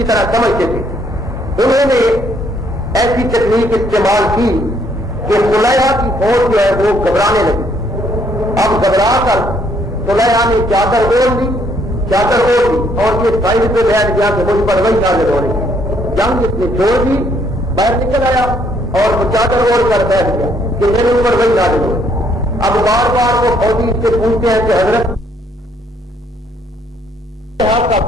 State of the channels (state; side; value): normal; both; correlation 0.68